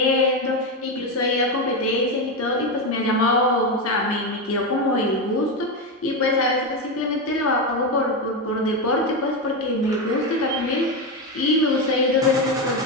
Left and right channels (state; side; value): normal; both; correlation 0.12